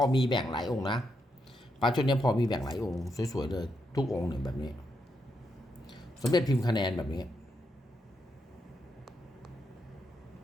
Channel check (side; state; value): both; normal; correlation 0.81